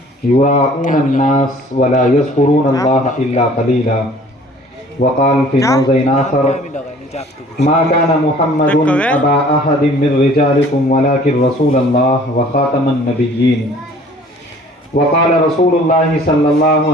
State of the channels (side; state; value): both; normal; correlation 0.52